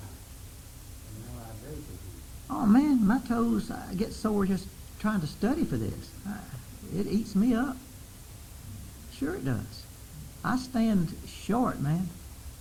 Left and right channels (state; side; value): identical; both; correlation 1.00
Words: what I do. Oh man, my toes get sore just trying to study for this. It eats me up. Sure it does. I stand short, man.